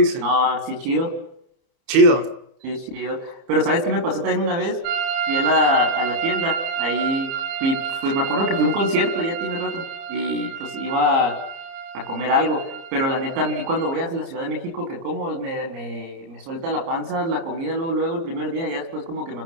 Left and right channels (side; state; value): left; late; 30 ms